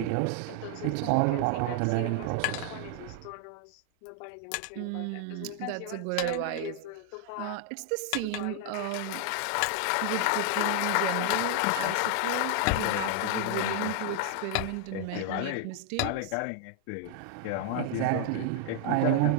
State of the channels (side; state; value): both; different; correlation 0.00